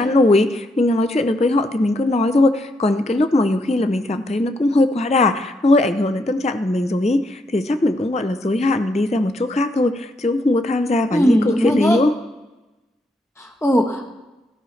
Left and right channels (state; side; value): normal; both; correlation 0.77